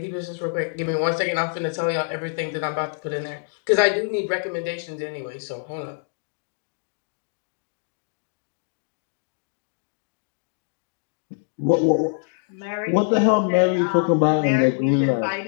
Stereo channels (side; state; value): right; silent; digital silence